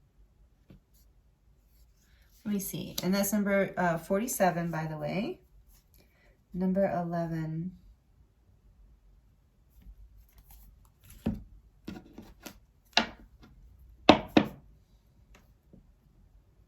let me see. And that's number 47, by the way. Number 11.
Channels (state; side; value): identical; both; correlation 1.00